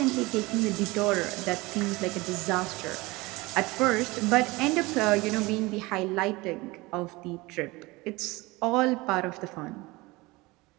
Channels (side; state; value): left; quieter; 22.4 dB